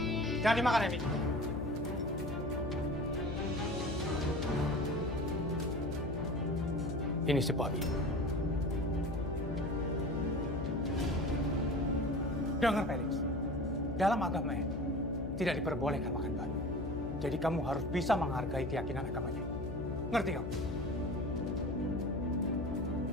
Jangan dimakan, Emi. Ini si babi. Dengar, Felix. Dalam agama ini, tidak diperbolehkan makan babi. Jadi kamu harus bisa menghargai keyakinan agamanya. Ngerti kamu?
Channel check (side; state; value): left; noise; hum, 6 dB below the sound